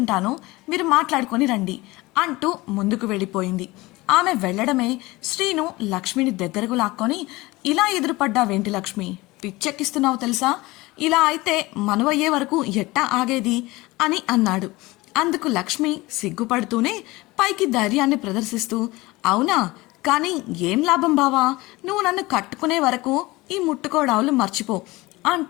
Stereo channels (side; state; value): right; quieter; 21.0 dB